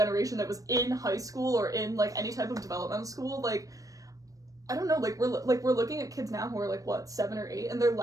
that was in high school or in like any type of developmental school. Like, I don't know. Like, we're looking at kids now who are like what, 7 or 8, and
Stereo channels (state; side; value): late; left; 0.16 ms